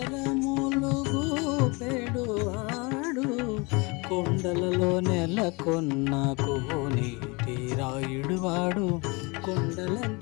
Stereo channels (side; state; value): right; quieter; 27.8 dB